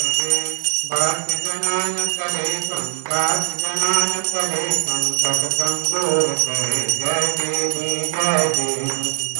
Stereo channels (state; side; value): silent; left; 65 dB below the other